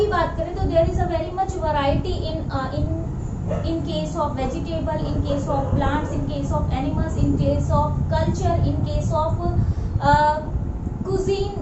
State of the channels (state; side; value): identical; both; correlation 1.00